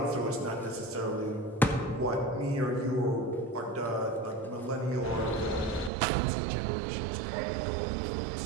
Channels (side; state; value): left; drops out; at 5.9 s